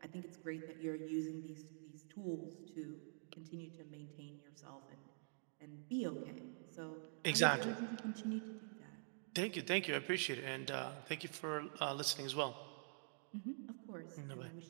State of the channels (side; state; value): left; silent; digital silence